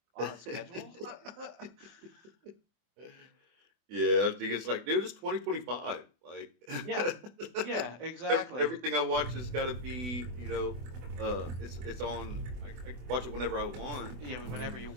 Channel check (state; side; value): late; left; 24 ms